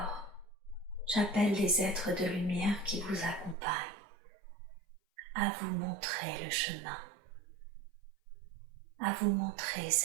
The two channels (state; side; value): drops out; left; at 3.6 s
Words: j'appelle les êtres de lumière qui vous accompagnent à vous montrer le chemin, à vous montrer